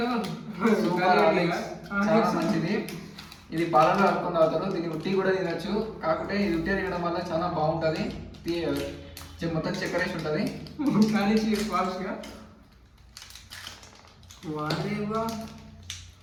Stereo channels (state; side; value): identical; both; correlation 1.00